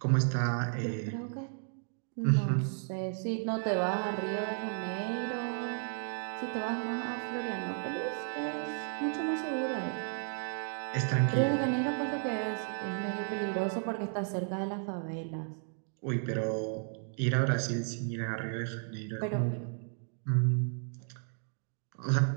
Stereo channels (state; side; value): silent; left; 55 dB below the other